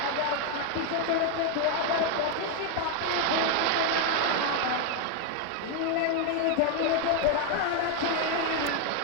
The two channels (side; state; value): both; different; correlation 0.01